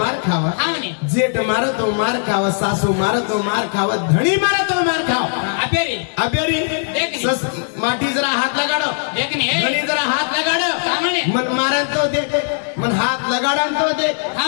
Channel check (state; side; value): silent; right; digital silence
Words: खावा जेठ मारो तो मार खावा सासू मारो तो मार खावा धनी मारो तो मार खावा अबेरी अबेरी माटी जरा हाथ लगाड़ो देखनी धनी जरा हाथ लगाड़ो मन मारन तो देख मन हाथ लगाड़न तो देख